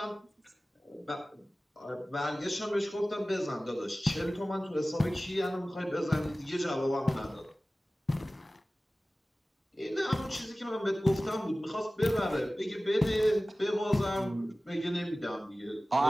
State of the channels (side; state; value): both; normal; correlation 0.97